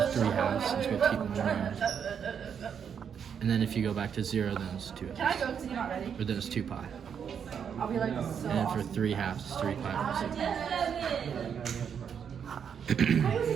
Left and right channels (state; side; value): quieter; left; 7.5 dB